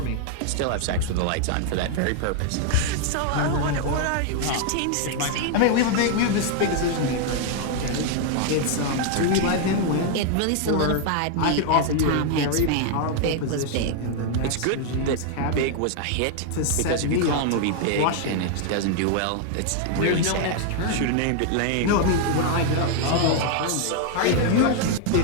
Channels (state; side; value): different; both; correlation 0.00